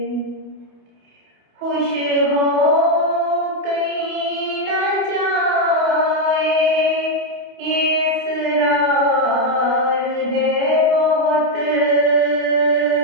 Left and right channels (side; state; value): left; late; 28 ms